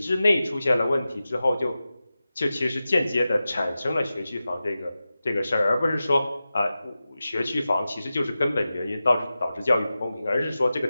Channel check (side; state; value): both; inverted; correlation -0.94